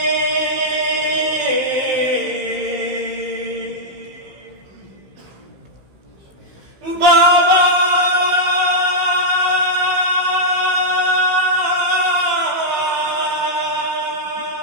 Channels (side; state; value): left; late; 15 ms